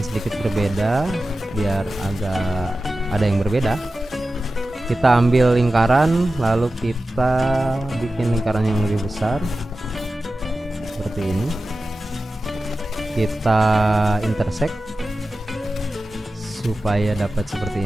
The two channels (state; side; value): normal; both; correlation 0.94